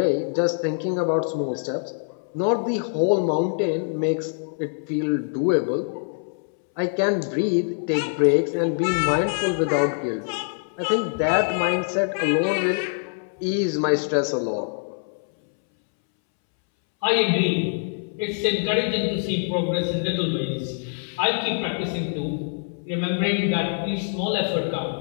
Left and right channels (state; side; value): silent; right; 62 dB below the other